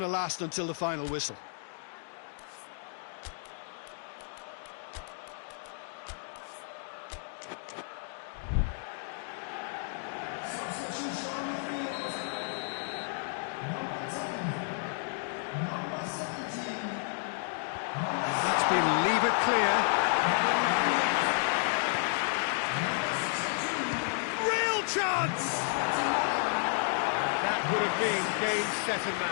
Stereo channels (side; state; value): right; silent; 57 dB below the other